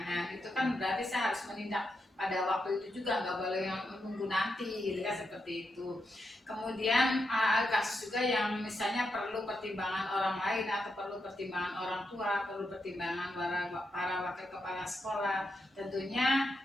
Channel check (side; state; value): both; normal; correlation 0.85